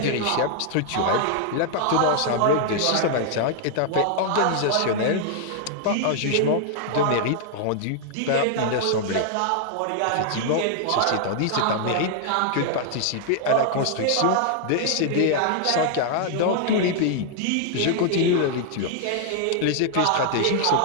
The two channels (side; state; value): both; different; correlation 0.00